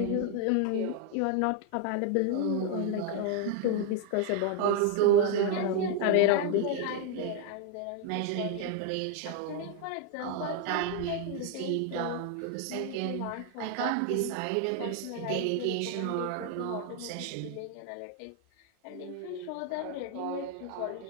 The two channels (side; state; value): both; different; correlation 0.00